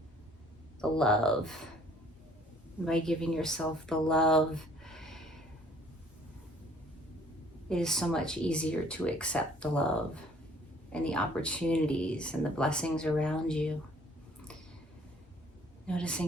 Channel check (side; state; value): both; normal; correlation 0.57